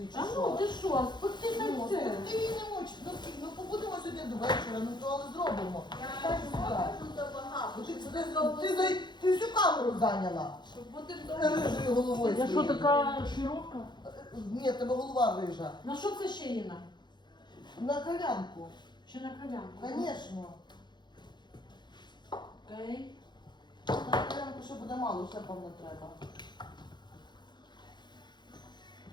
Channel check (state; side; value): late; right; 0.21 ms